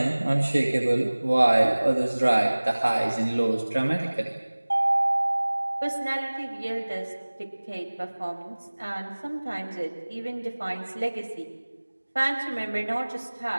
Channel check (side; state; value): both; inverted; correlation -1.00